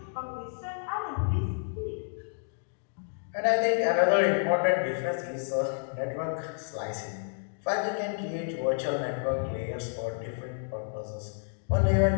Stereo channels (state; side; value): silent; right; digital silence